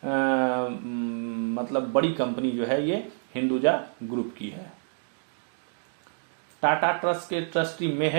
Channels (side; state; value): left; silent; 59 dB below the other